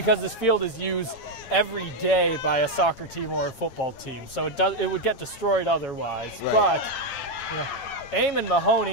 this field is used every day by a soccer team or a football team, so it would get destroyed otherwise. Right. But, you know, Eamon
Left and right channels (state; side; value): late; right; 8.9 ms